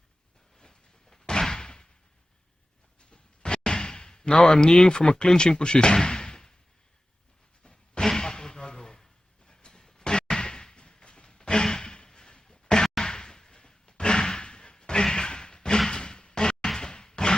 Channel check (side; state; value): both; normal; correlation 0.95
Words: Now I'm kneeling from a clinching position.